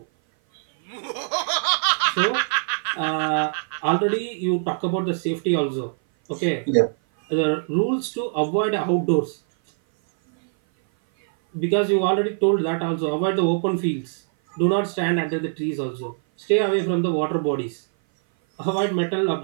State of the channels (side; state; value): left; silent; 57 dB below the other